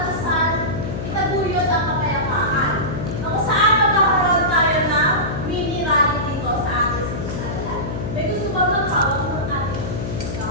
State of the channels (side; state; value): left; noise; hum, 5 dB below the sound